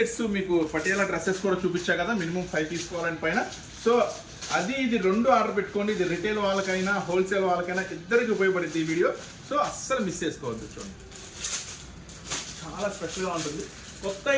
మీకు పటియాలా డ్రెస్సెస్ కూడా చూపించా కదా, మినిమం 5 తీసుకోవాలని పైన. సో అది ఇది 2 ఆర్డర్ పెట్టుకోండి. ఇది రిటైల్ వాళ్ళకైనా హోల్సేల్ వాళ్ళకైనా ఇద్దరికి ఉపయోగపడుతుంది ఈ వీడియో. సో అస్సలు మిస్ చేసుకోవద్దు. చూడండి చాలా స్పెషల్గా ఉంటుంది. కొత్త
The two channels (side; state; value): both; identical; correlation 1.00